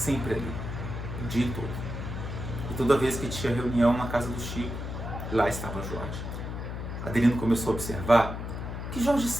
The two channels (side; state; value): left; noise; hum, 6 dB below the sound